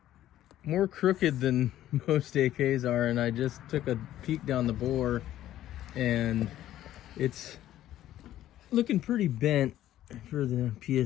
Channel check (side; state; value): right; quieter; 13.0 dB